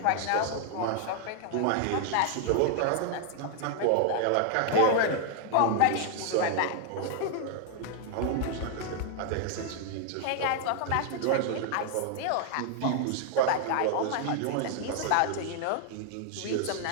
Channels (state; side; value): different; both; correlation 0.00